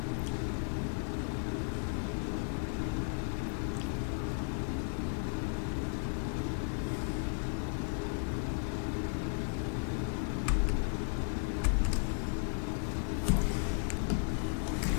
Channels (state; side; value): silent; right; 55 dB below the other